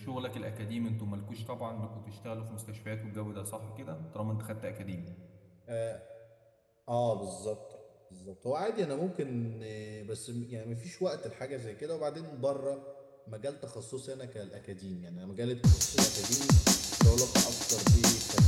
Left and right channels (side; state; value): both; identical; correlation 1.00